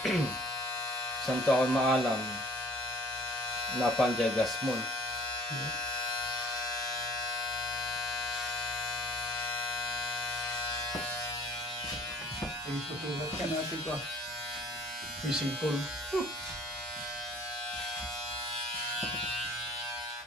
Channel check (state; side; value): normal; both; correlation 0.51